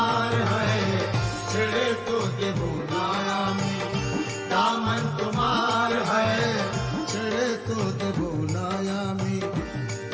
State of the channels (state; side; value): identical; both; correlation 1.00